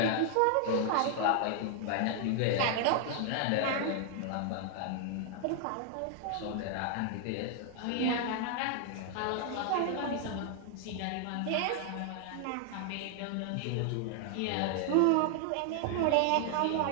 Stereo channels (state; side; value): different; both; correlation 0.00